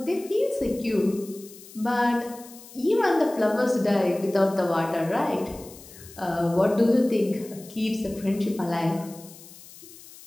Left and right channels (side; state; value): left; noise; hiss, 19 dB below the sound